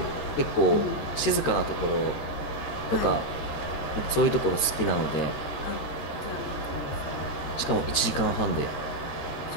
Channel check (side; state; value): right; late; 13 ms